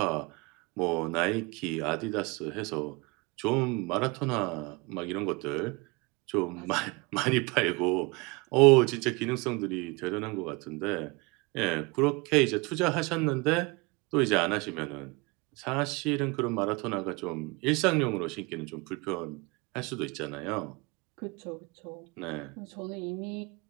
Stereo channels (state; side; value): quieter; left; 26.9 dB